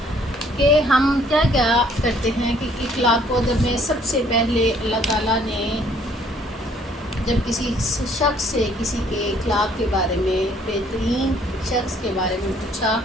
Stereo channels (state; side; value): normal; both; correlation 0.62